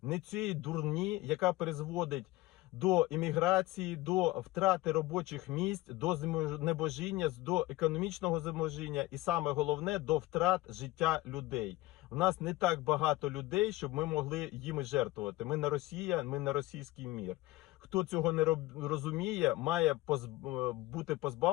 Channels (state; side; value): quieter; right; 18.8 dB